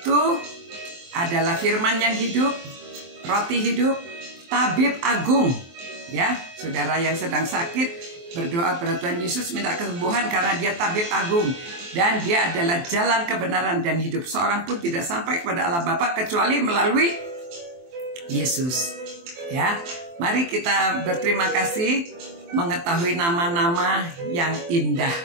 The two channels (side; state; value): left; late; 23 ms